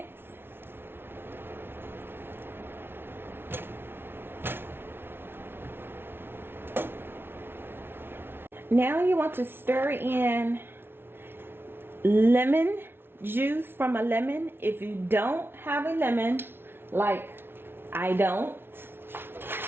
Now you want to stir in lemon juice from a lemon. If you don't have a lemon, like I don't,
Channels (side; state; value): left; late; 0.11 ms